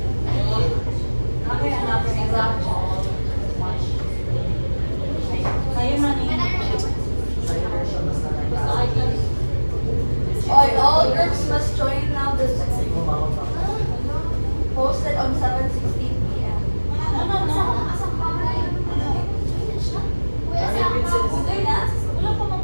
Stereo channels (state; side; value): inverted; both; correlation -1.00